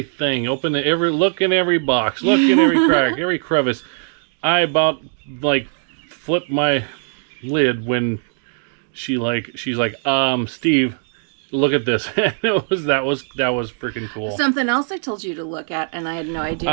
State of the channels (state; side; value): silent; left; digital silence